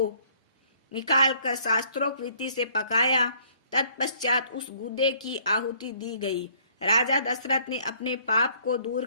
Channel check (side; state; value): both; inverted; correlation -0.61